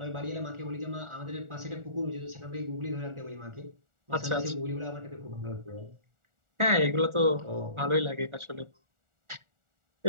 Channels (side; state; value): left; late; 1.4 ms